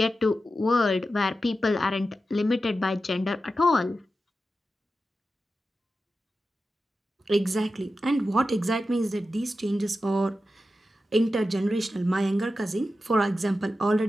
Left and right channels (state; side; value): normal; both; correlation 0.91